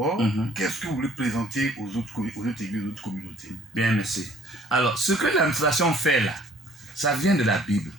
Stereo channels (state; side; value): normal; both; correlation 0.57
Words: qu'est-ce que vous voulez présenter aux autres églises, aux autres communautés? Bien, merci. Alors, ce que l'administration fait là, ça vient de la Bible.